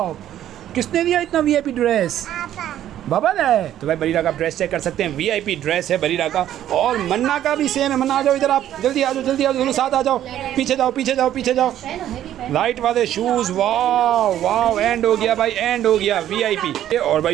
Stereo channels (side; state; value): left; quieter; 11.7 dB